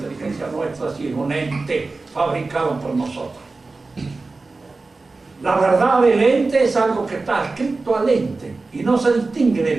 nuestra, si es un ente fabricado por nosotros. La verdad del ente es algo que está adscrito al ente y no se distingue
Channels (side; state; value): left; quieter; 3.6 dB